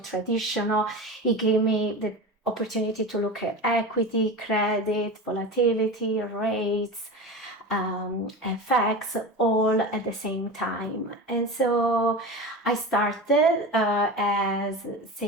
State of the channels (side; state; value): both; normal; correlation 0.28